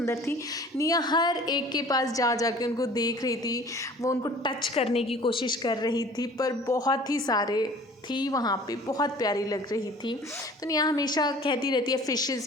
थी। निया हर एक के पास जा के उनको देख रही थी, वो उनको टच करने की कोशिश कर रही थी, पर बहुत ही सारे थी वहाँ पे, बहुत प्यारी लग रही थी। तो निया हमेशा कहती रहती है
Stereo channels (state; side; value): normal; both; correlation 0.48